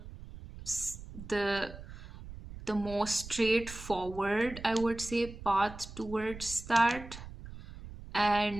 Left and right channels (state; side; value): noise; right; rumble, 13 dB below the sound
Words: the most straightforward, I would say, path towards that,